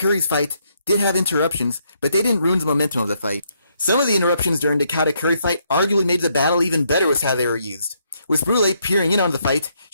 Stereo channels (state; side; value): inverted; both; correlation -0.74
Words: fight did have interruptions, but they didn't ruin the momentum of the fight. Some of the interruptions during the Katakuri fight arguably made the battle even better with how they were used. With Brule peering in on the fight,